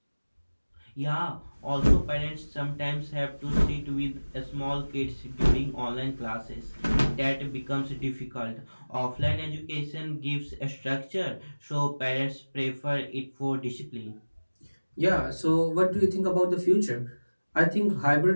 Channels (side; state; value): both; inverted; correlation -1.00